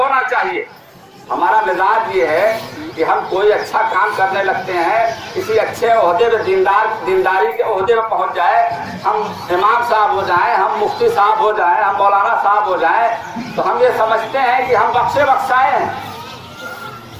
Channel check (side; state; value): both; identical; correlation 1.00